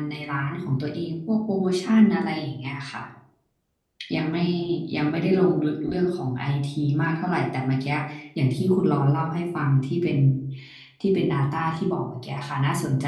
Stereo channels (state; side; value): identical; both; correlation 1.00